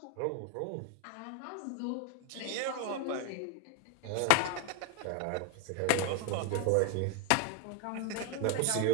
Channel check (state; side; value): different; both; correlation 0.00